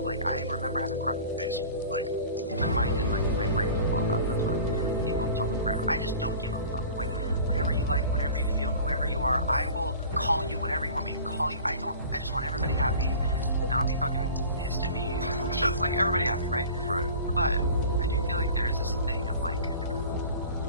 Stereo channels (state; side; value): inverted; both; correlation -0.42